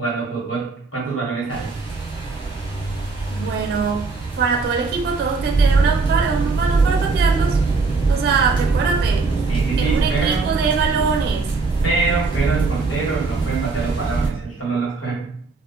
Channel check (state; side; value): quieter; left; 4.1 dB